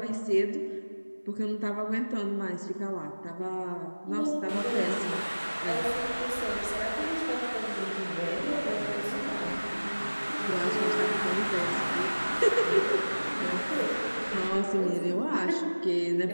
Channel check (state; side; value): inverted; both; correlation -1.00